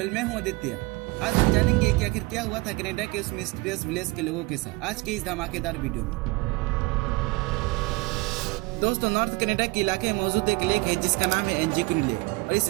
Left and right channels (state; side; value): quieter; left; 24.0 dB